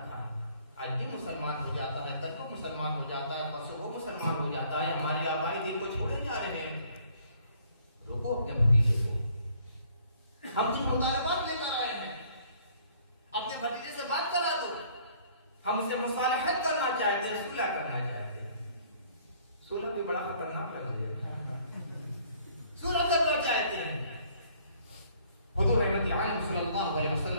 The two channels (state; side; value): inverted; both; correlation -0.60